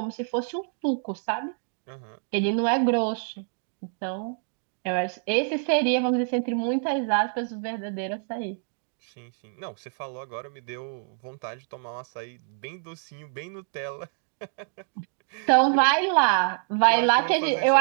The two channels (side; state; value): left; silent; 60 dB below the other